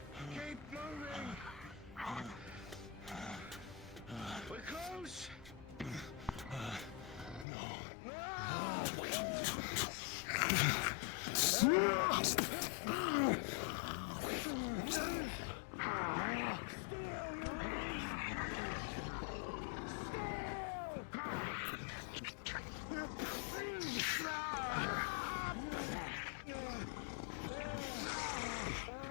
Keep moving! We're close!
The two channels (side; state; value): right; drops out; at 7.5 s